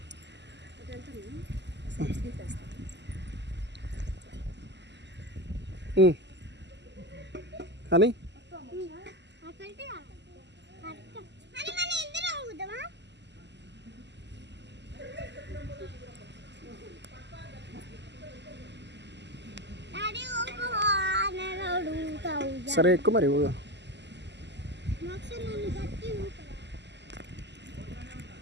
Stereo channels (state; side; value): late; left; 0.51 ms